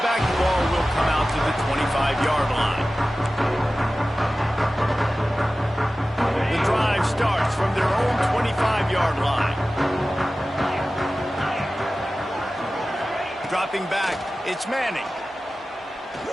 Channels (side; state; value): both; normal; correlation 0.96